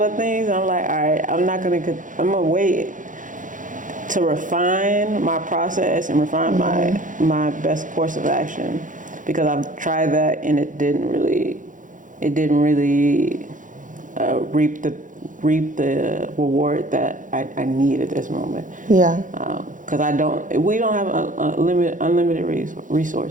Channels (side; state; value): left; late; 0.38 ms